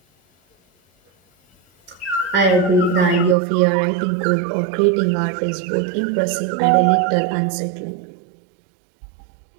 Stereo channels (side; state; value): left; drops out; at 3.4 s